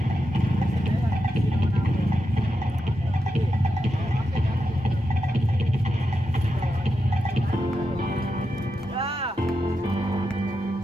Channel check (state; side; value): normal; both; correlation 0.87